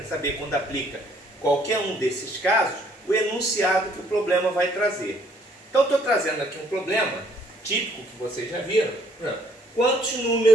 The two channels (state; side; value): normal; both; correlation 0.64